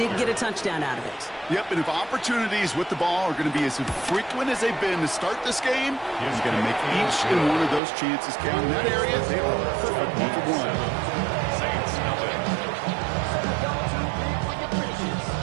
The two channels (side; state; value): left; drops out; at 7.8 s